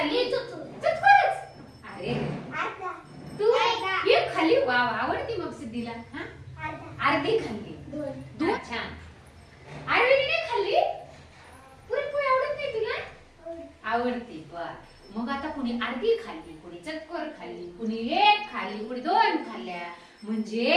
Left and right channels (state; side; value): identical; both; correlation 1.00